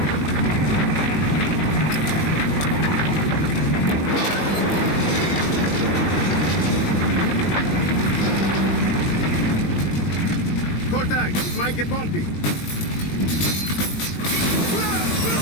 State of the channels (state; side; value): late; right; 20 ms